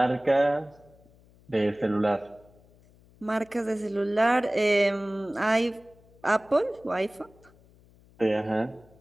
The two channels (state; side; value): noise; left; hum, 28 dB below the sound